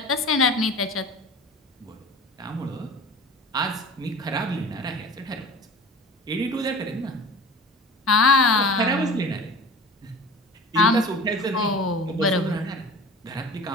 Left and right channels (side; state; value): both; normal; correlation 0.39